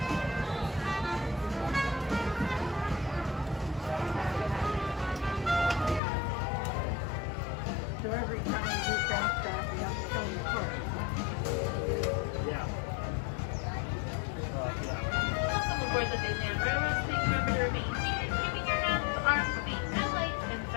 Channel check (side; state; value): right; drops out; at 6.0 s